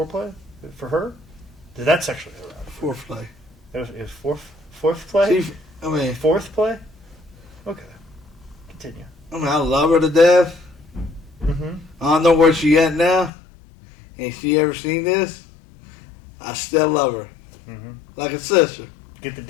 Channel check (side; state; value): right; drops out; at 13.3 s